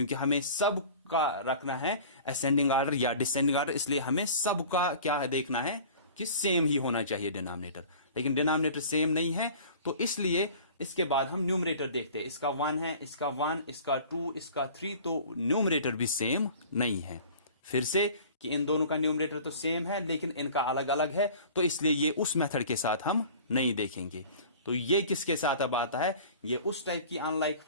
हमें सब का रखना है असेंडिंग ऑर्डर या डिसेंडिंग ऑर्डर। इसलिए हमें सबका क्या देखना है कि सेम ही होना चाहिए डिनोमिनेटर। लेकिन डिनोमिनेटर सेम नहीं है, तो इसलिए इसके बाद हम न्यूमरेटर देखते हैं। इसका 1 है, इसका 1, इसका 2, इसका 3, तो न्यूमरेटर भी सेम नहीं है। फिर से कि इन दोनों का न्यूमरेटर तो सेम है लेकिन इनका अलग अलग है, तो इसलिए ये उस मेथड के साथ हम नहीं देखेंगे। तो ये किसके साथ अब आता है, ये उस टाइप की अनलाइक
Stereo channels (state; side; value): inverted; both; correlation -0.44